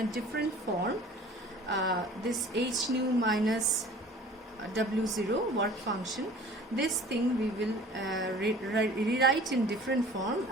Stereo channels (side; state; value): both; normal; correlation 0.46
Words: different form. This h nu minus w0 work function, this thing we will rewrite in different form,